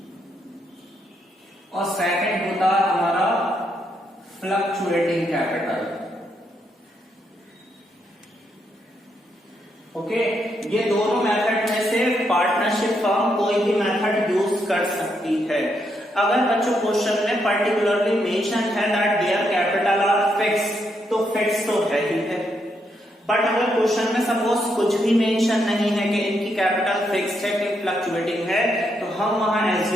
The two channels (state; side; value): normal; both; correlation 0.78